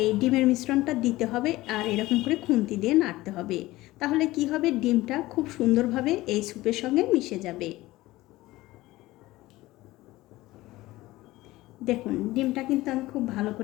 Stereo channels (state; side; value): quieter; right; 18.1 dB